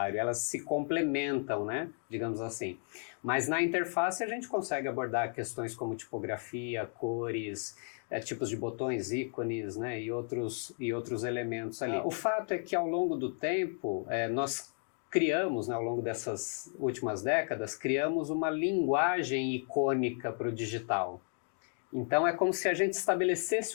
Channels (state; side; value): silent; right; 55 dB below the other